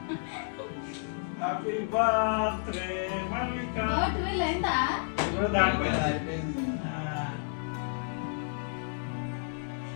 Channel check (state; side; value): silent; right; digital silence